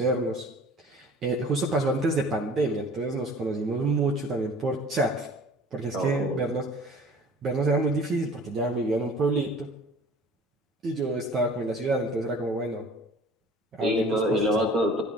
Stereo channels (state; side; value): normal; both; correlation 0.47